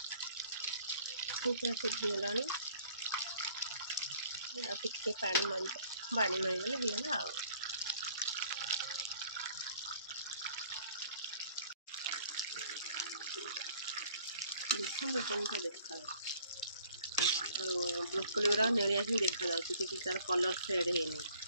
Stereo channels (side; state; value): both; inverted; correlation -0.57